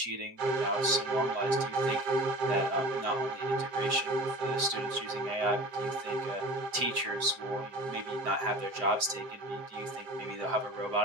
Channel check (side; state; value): left; late; 2.6 ms